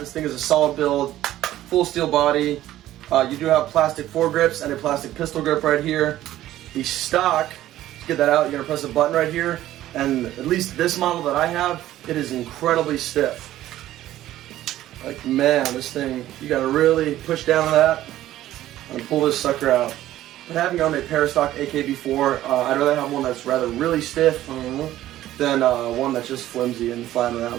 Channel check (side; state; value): left; quieter; 13.9 dB